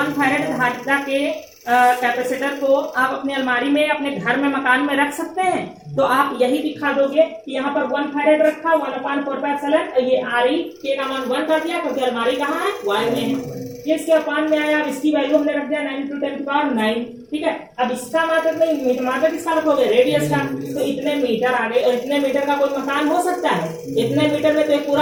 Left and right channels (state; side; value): identical; both; correlation 1.00